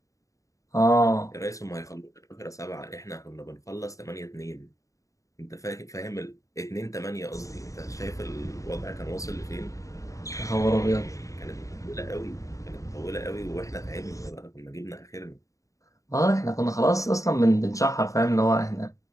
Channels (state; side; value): late; right; 0.16 ms